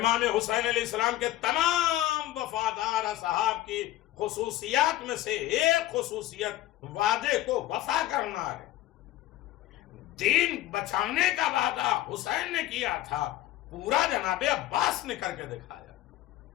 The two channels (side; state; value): right; quieter; 14.9 dB